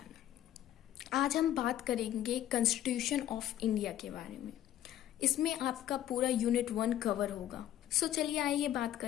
आज हम बात करेंगे कॉन्स्टिट्यूशन ऑफ इंडिया के बारे में। इसमें आपका पूरा यूनिट 1 कवर होगा। चलिए आइए बात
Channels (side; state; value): right; quieter; 12.1 dB